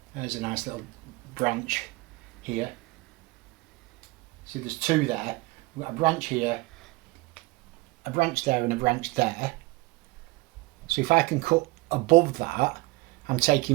There's a nice little branch here. See, there's two there. We've got a branch here, a branch there and a branch there. So if I can cut above that, I'm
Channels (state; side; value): quieter; left; 22.8 dB